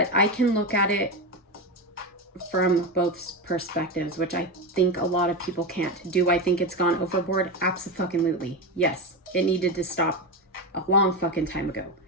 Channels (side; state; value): both; normal; correlation 0.16